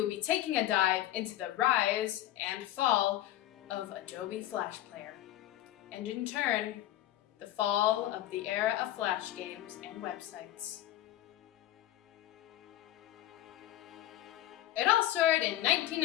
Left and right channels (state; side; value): quieter; right; 13.8 dB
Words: be taking a dive into the rise and fall of Adobe Flash Player, and in turn, the fall of the era of Flash games and websites. It all started in